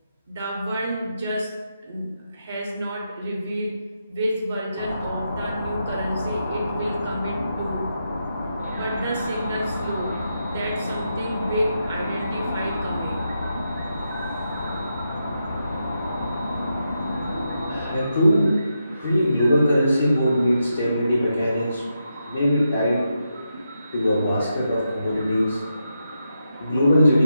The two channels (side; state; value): both; inverted; correlation -0.85